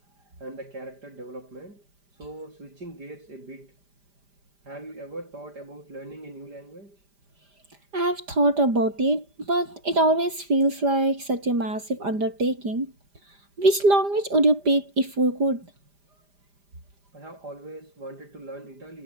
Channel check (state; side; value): late; left; 5.0 ms